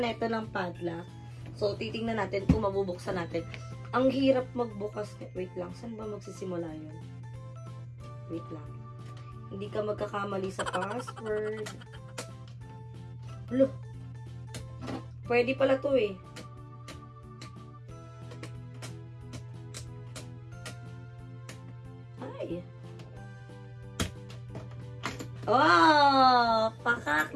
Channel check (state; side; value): identical; both; correlation 1.00